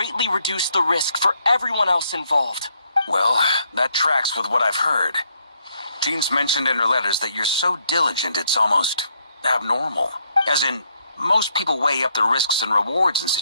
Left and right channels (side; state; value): both; inverted; correlation -0.73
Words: reduce the risk for everyone else involved. Well, that tracks with what I've heard. Jean's mentioned in her letters that you're so diligent it's almost abnormal. As in, most people weigh up the risks and rewards in